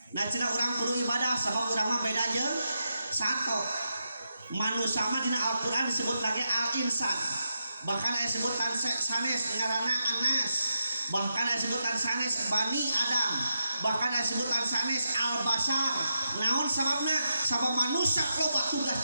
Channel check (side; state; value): both; inverted; correlation -0.86